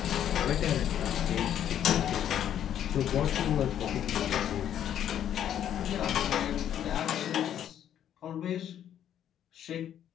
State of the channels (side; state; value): right; quieter; 10.2 dB